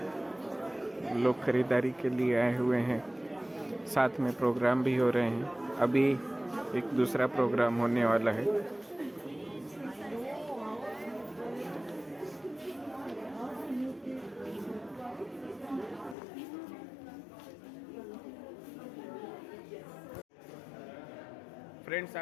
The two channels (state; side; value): drops out; right; at 16.2 s